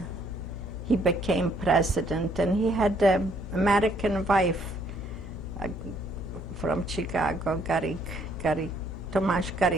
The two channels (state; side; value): normal; both; correlation 0.67